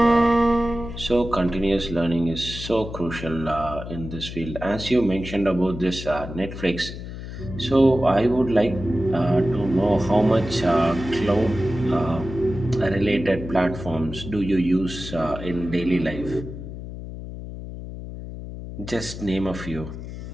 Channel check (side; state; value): left; noise; hum, 10 dB below the sound